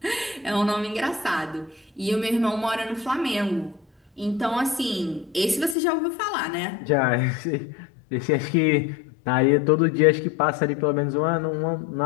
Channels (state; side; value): drops out; right; at 5.8 s